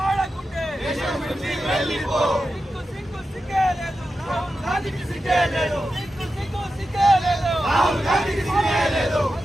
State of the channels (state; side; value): normal; both; correlation 0.91